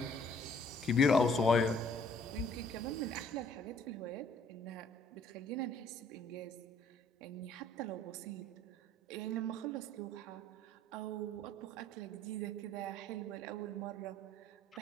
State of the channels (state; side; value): normal; both; correlation 0.60